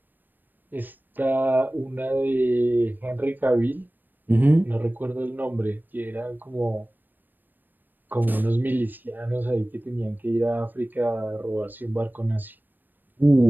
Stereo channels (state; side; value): late; left; 0.091 ms